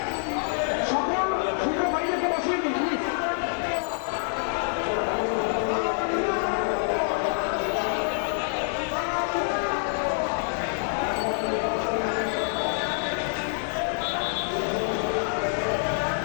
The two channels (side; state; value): right; silent; digital silence